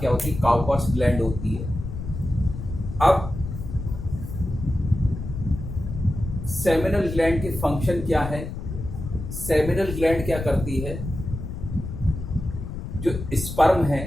क्या होती है, काउपर्स ग्लैंड होती है। अब सेमिनल ग्लैंड के फंक्शन क्या है। सेमिनल ग्लैंड क्या करती है, जो स्पर्म है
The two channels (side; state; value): left; noise; rumble, 7 dB below the sound